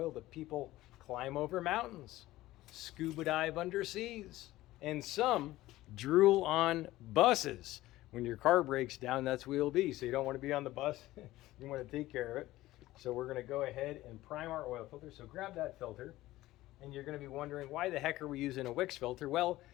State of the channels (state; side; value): quieter; right; 16.6 dB